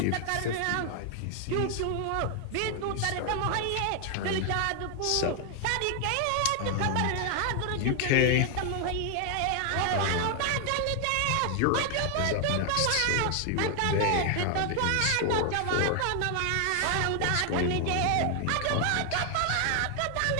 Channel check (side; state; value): both; different; correlation 0.00